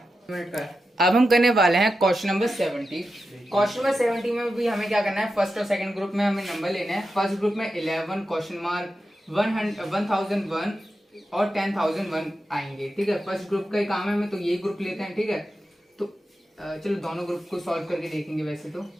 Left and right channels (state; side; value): normal; both; correlation 0.90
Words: अब हम करने वाले हैं क्वेश्चन नंबर 70। क्वेश्चन नंबर 70 में भी हमें क्या करना है, फर्स्ट और सेकंड ग्रुप में हमें नंबर लेने हैं। फर्स्ट ग्रुप में 11 क्वेश्चन मार्क 1001 और 10,001 आएंगे। ठीक है, फर्स्ट ग्रुप का ही काम है हमें, तो ये ग्रुप लेते हैं। ठीक है, तो चलो दोनों ग्रुप को सॉल्व करके देखेंगे। वैसे तो